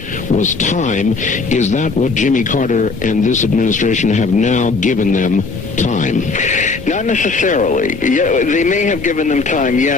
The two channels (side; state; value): right; quieter; 4.1 dB